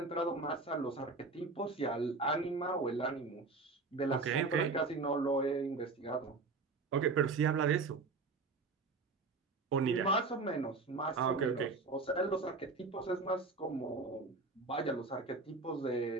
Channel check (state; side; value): quieter; left; 3.9 dB